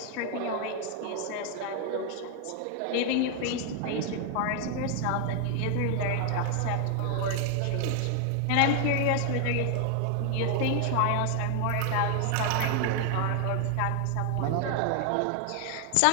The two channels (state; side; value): different; both; correlation 0.00